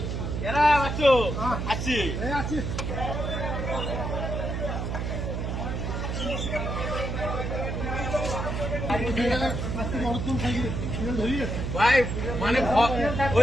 এরা আছো আছি আছি ভাই মানে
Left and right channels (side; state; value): right; noise; hum, 2 dB below the sound